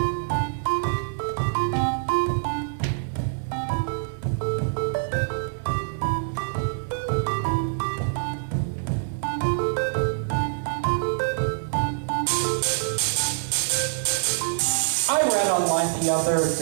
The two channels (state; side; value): silent; left; 62 dB below the other